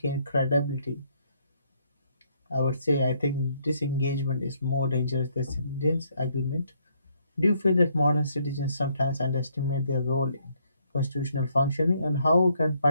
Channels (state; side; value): inverted; both; correlation -0.70